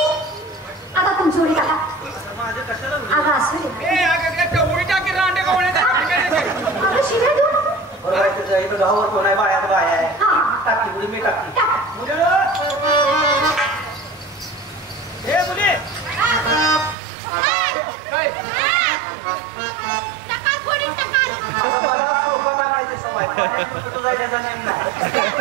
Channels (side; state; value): left; drops out; at 16.9 s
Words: आता तुमची उडी टाका. अगं असं अगं शिवाय देऊ नको. बरोबर इथं गावावर कोण आहे? बायात बाय आहे. टाकी उडी मी टाकी. हे मुली मला सोबत टाकायची सवय. कुठं जायचा नेम नाही.